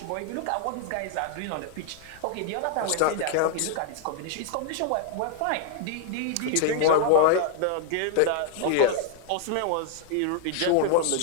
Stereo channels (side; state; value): both; different; correlation 0.00